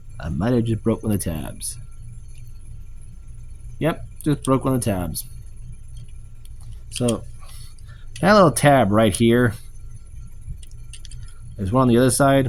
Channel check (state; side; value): identical; both; correlation 1.00